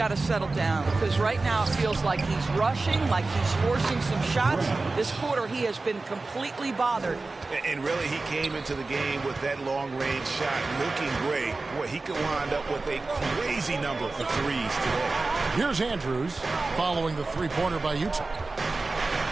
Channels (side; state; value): left; quieter; 3.5 dB